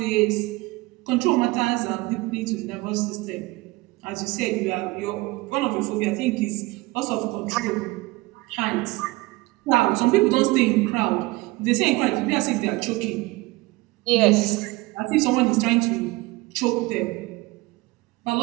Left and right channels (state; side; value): quieter; left; 22.0 dB